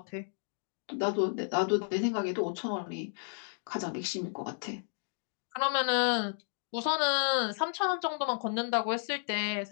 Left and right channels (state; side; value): silent; right; 55 dB below the other